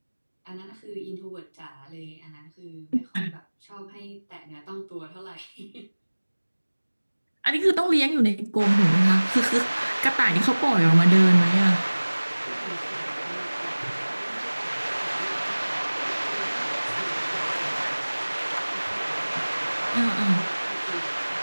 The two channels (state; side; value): inverted; both; correlation -1.00